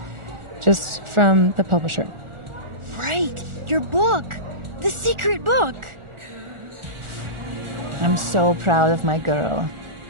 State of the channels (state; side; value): late; left; 1.4 ms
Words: just from the publisher. Right, your book. The secret book. I'm so proud of my girl.